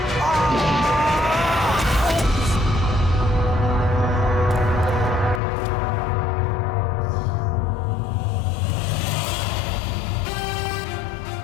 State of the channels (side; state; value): right; drops out; at 5.4 s